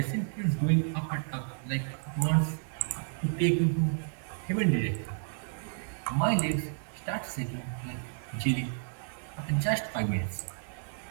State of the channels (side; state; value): left; silent; digital silence